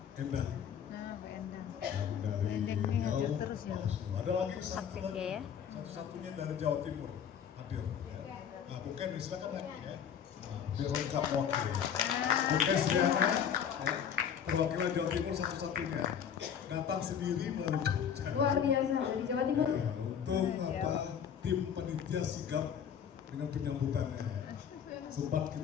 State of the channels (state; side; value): quieter; right; 8.2 dB